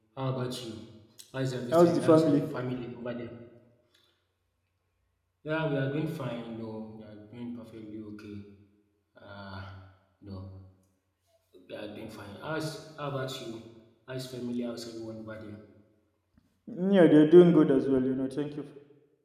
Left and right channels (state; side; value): identical; both; correlation 1.00